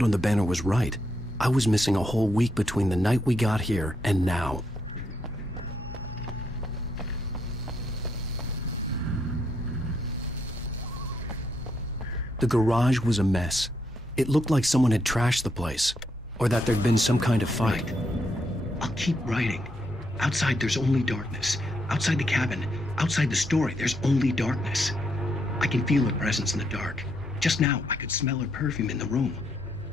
on the banner was right, I was missing a whole week between the night we got here and now. The garage was a mess. It looked like someone had trashed the place, or that there'd been some kind of fight. I'll keep writing. Outside, there's only darkness. Outside the cabin, outside the story, there's only darkness. I can feel her presence in the dark. Just now, I could smell her perfume in the room.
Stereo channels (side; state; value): both; normal; correlation 0.77